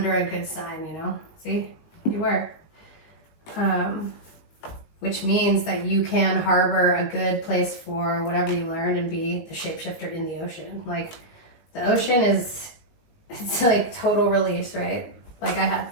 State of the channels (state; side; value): late; right; 19 ms